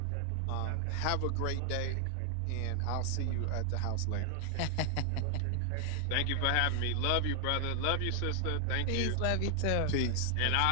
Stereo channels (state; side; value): different; both; correlation 0.00